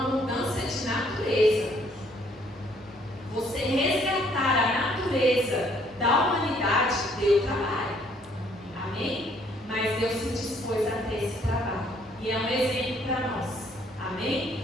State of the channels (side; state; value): both; normal; correlation 0.64